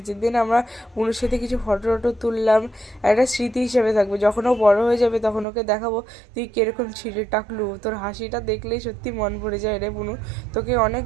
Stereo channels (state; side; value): drops out; left; at 5.5 s